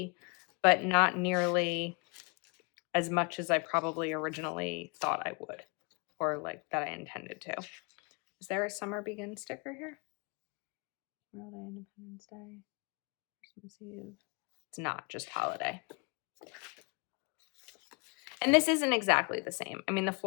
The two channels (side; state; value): right; quieter; 33.1 dB